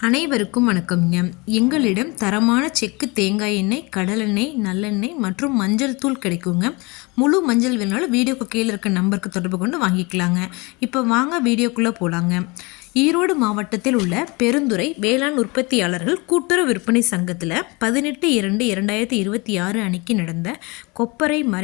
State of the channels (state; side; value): quieter; right; 26.8 dB